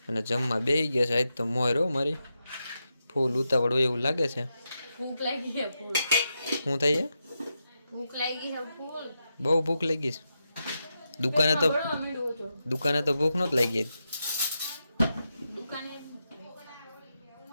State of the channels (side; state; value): both; inverted; correlation -0.87